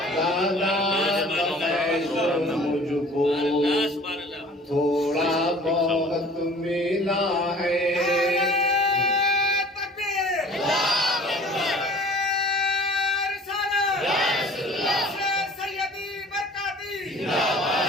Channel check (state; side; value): normal; both; correlation 0.48